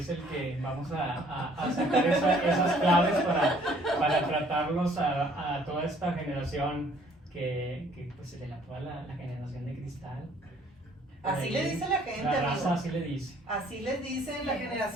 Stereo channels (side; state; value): both; normal; correlation 0.60